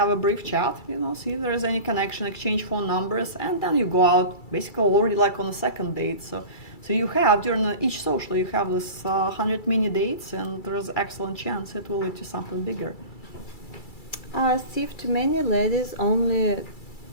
a brief chat, see if there is any connection, exchange phone numbers, and then you go out basically already like on a second date. So you have during each social you have this 100 mini dates, and there's excellent chance it will lead to something bigger. Steve, too many ladies only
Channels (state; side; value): late; right; 2.3 ms